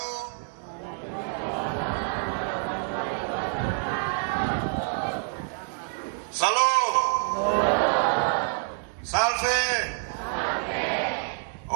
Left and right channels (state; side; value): silent; left; 55 dB below the other